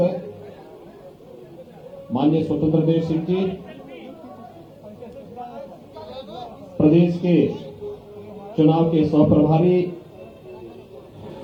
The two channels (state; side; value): identical; both; correlation 1.00